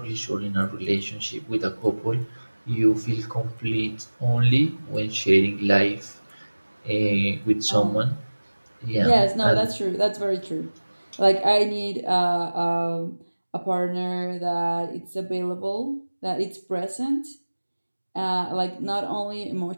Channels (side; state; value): both; inverted; correlation -1.00